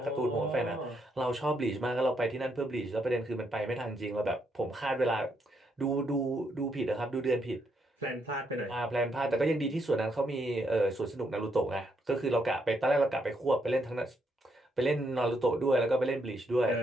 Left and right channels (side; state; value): both; normal; correlation 0.76